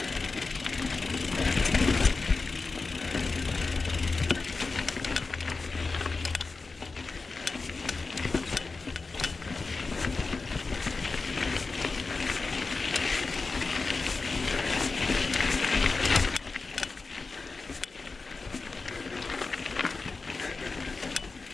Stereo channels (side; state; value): right; quieter; 4.0 dB